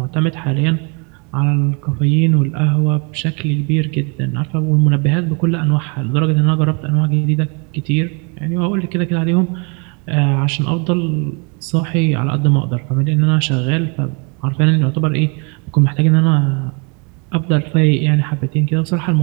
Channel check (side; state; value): left; quieter; 34.1 dB